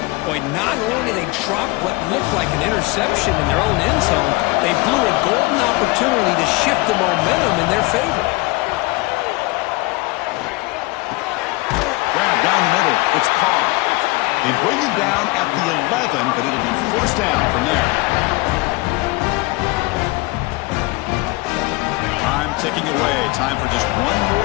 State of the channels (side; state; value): right; quieter; 23.2 dB